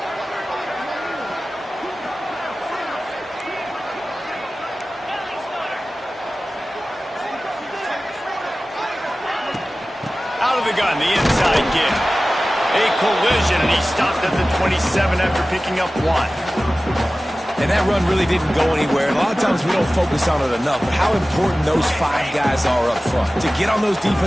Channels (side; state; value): both; normal; correlation 0.96